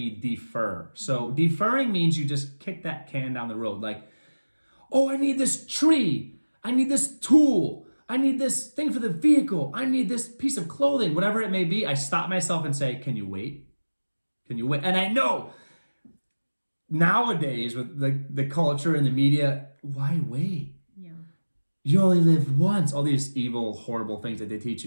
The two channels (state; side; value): inverted; both; correlation -1.00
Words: defer. So deferring means you just kick that can down the road. Like, oh, I need this tree. I need this tool. I need this thing for the vehicle. I need this piece of clothing, whatever it may be. I stop myself and say, can you wait? Can you wait? And I know nowadays with the culture and the media, why wait? Yeah. You only live once. All these evil, horrible things that they teach